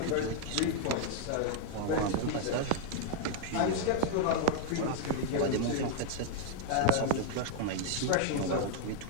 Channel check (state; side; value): different; both; correlation 0.00